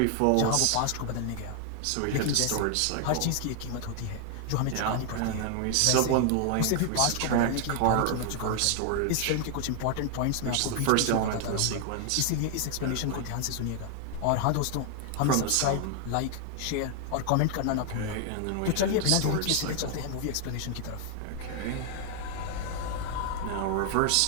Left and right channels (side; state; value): both; different; correlation 0.00